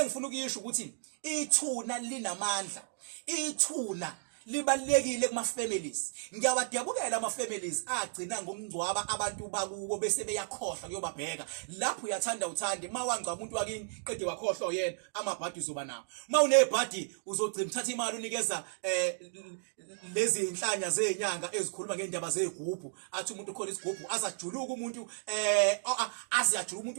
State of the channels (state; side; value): silent; left; digital silence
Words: ukuyisho ukuthi ithuna linamandla ithuna libalekile kuma families. Ngiyawadabulela ama families agcina ngomngcwaba abantu bakubo bese beyakhohlwa kuyobabheka. Lapho uyathanda uthande mawangcwa umuntu wakini qede wakhohlwa yena amabhadi uzoba nawo. Mawunebhadi uzogcina uthatha imali unikeza lezi inhlanya zenyanga ezikhuluma ngendaba zegubhu. Athi umuntu khona isigubhu azajuluka umuntu aziyajuluka